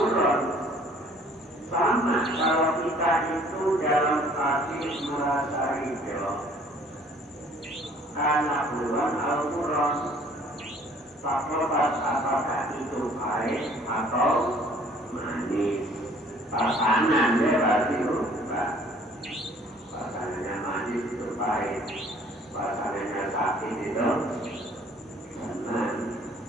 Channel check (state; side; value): normal; both; correlation 0.56